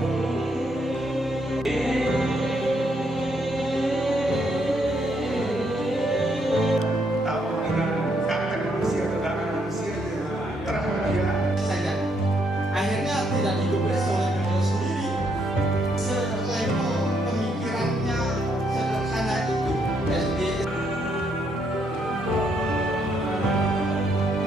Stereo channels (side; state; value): both; normal; correlation 0.74